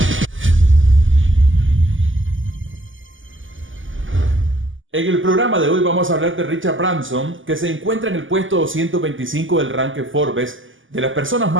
el programa de hoy vamos a hablar de Richard Branson, que se encuentra en el puesto 225 del ranking Forbes de las personas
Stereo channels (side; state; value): left; late; 0.57 ms